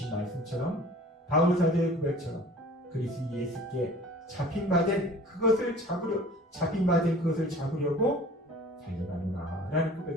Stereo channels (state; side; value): normal; both; correlation 0.46